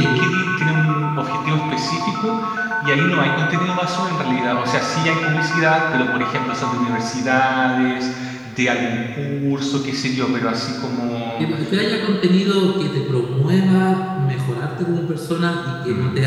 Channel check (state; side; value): identical; both; correlation 1.00